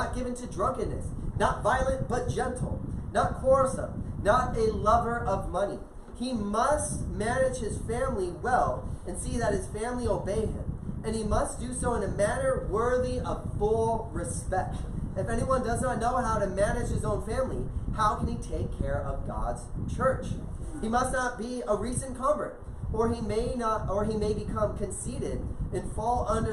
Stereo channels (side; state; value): both; identical; correlation 1.00